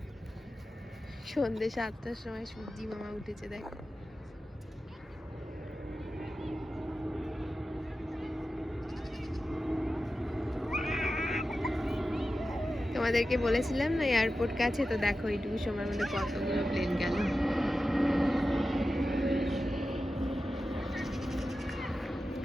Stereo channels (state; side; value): normal; both; correlation 0.93